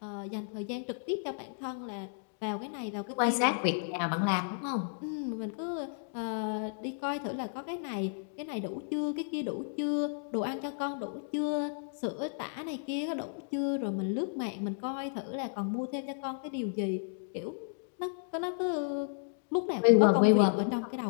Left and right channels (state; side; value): silent; right; digital silence